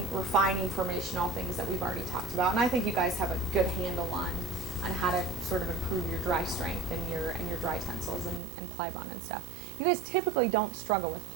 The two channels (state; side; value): drops out; left; at 8.4 s